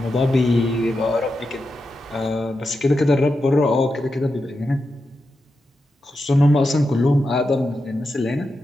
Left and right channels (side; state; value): both; normal; correlation 0.88